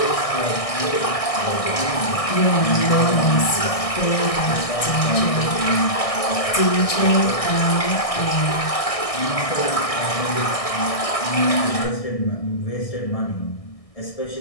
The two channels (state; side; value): late; right; 1.6 ms